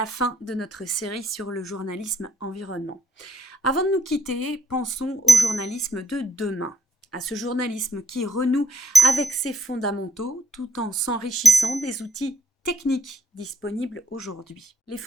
fin de notre série sur le journalisme environnement. Avant de nous quitter, pensons au journalisme de demain, à ce journalisme qui renoue avec ses fondamentaux tout en s'enrichissant des outils techniques disponibles aujourd'hui. Les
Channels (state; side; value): normal; both; correlation 0.73